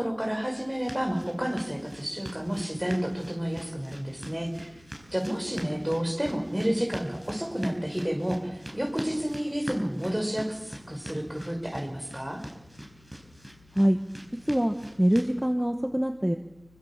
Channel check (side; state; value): left; noise; hum, 28 dB below the sound